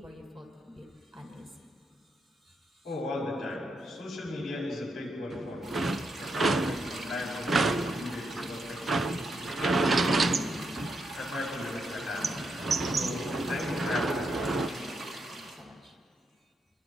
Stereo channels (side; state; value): both; normal; correlation 0.81